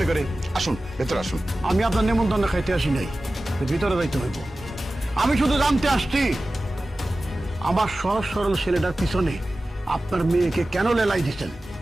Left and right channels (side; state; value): both; normal; correlation 0.96